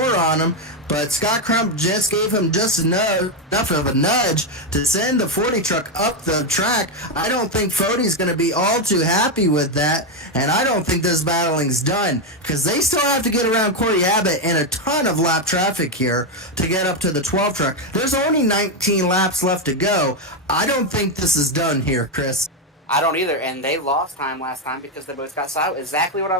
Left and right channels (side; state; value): both; normal; correlation 0.06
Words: on him, but Scott Crump just gave him just enough of a nudge to send the 40 truck up the track. I don't think Fody's going to be all too happy with that, and I don't think this battling's done because they still have to get around Corey Abbott and a ton of lap traffic here to get up to the 12 truck. There's only 19 laps left to go. I don't think this is done here, Chris. I don't either, and they lost time last time because they both got silent. Exactly what I